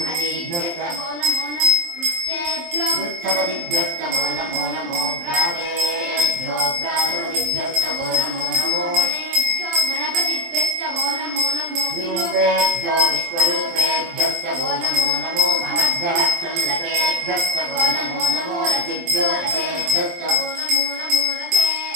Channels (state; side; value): late; left; 23 ms